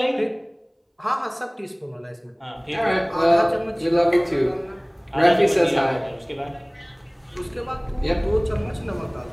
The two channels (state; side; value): identical; both; correlation 1.00